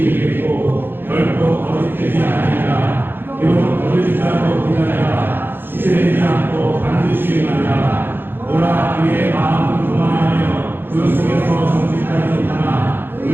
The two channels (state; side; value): late; left; 0.10 ms